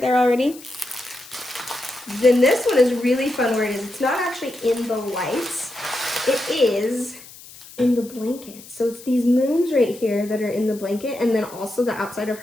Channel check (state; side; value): noise; left; hiss, 19 dB below the sound